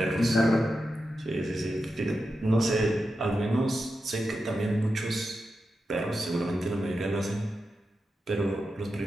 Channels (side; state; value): both; normal; correlation 0.89